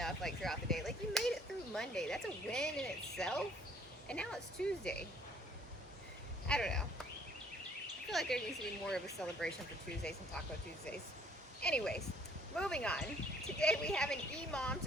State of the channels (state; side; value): normal; both; correlation 0.60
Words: like throughout the day. Like you made it through Monday. That's a win in itself. And now it's Tuesday. I don't know. I feel like there needs to be more of a celebration for Tuesdays and Taco Tuesdays. Anyways, moving on. Today we have an EMOM